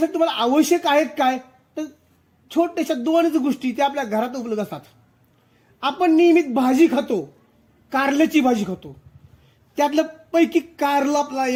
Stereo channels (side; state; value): both; identical; correlation 1.00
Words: तुम्हाला आवश्यक आहेत काय, तर छोट्याशा 2 गोष्टी त्या आपल्या घरात उपलब्ध असतात. आपण नियमित भाजी खातो, कारल्याची भाजी खातो, त्यातलं पैकी कारलं